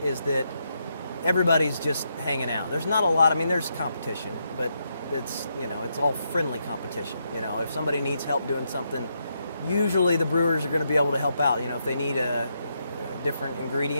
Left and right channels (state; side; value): inverted; both; correlation -0.80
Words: is that everybody's just hanging out. There's not a lot, there's competition, but it's all friendly competition. If somebody needs help doing something, usually the brewers are going to be able to help out. If they need a different